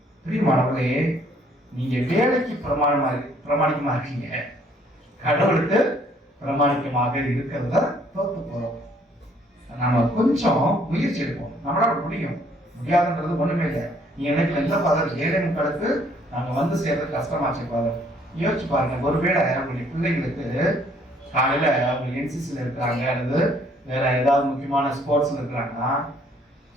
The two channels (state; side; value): normal; both; correlation 0.63